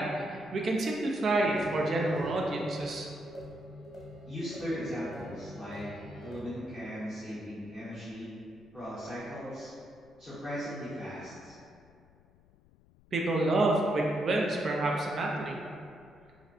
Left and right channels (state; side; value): noise; left; rumble, 27 dB below the sound